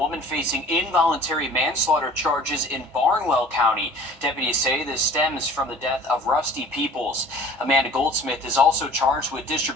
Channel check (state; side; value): normal; both; correlation 0.47